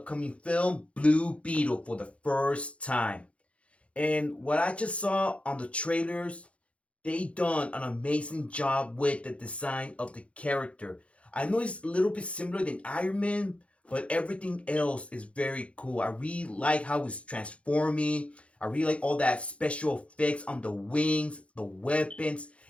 film Blue Beetle for the first time. And what I just saw on the trailers, they done an amazing job with the design of the character. I know it's a little bit similar than Iron Man, but everything else is very cool. I really like how it's transforming. I really like all that special effects on the wings, the weapons,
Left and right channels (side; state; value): right; late; 0.062 ms